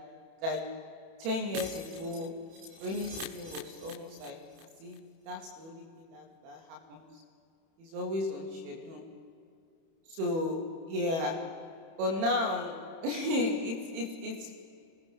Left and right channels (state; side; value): late; left; 31 ms